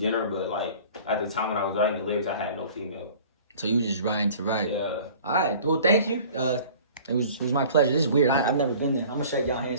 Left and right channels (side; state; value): both; inverted; correlation -0.46